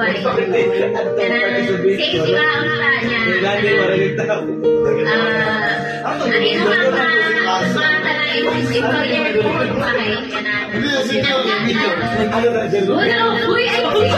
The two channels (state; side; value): identical; both; correlation 1.00